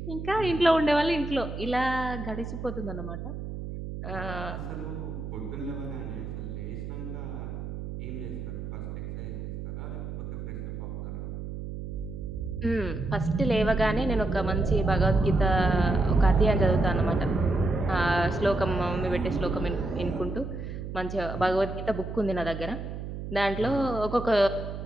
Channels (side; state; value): right; noise; hum, 7 dB below the sound